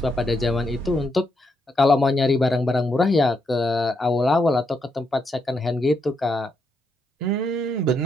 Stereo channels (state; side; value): normal; both; correlation 0.79